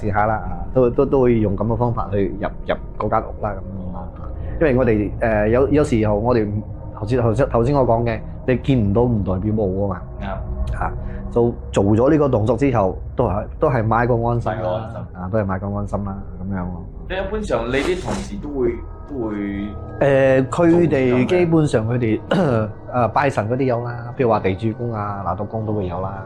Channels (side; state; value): both; identical; correlation 1.00